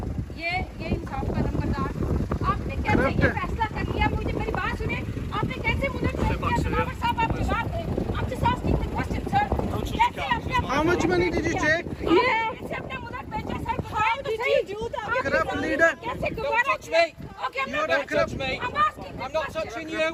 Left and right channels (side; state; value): both; identical; correlation 1.00